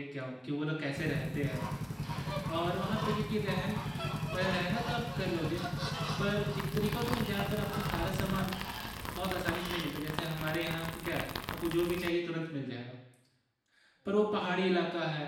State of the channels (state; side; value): identical; both; correlation 1.00